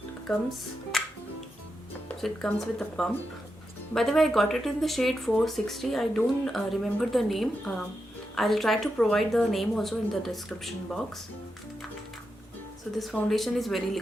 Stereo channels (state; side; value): normal; both; correlation 0.87